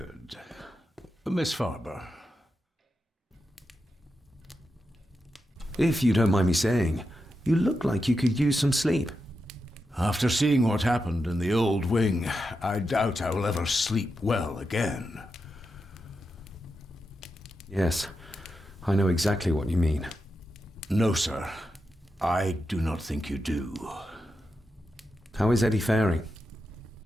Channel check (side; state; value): both; normal; correlation 0.88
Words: Miss Farber. If you don't mind me saying, you look like you could use some sleep. After seeing what happened in the old wing, I doubt I will ever sleep well again. Yes, I know exactly what you mean. No, sir. I do not think you do. How is Eddie faring?